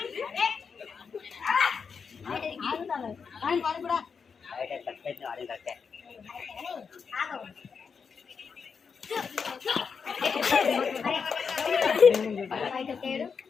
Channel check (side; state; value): right; quieter; 5.9 dB